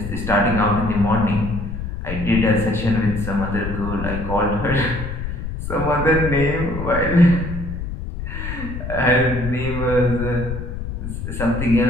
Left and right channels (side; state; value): left; noise; rumble, 6 dB below the sound